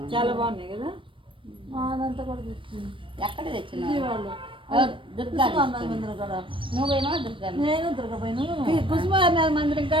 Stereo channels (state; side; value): late; left; 0.25 ms